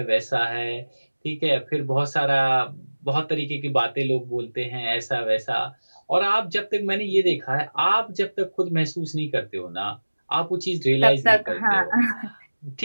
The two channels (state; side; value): inverted; both; correlation -1.00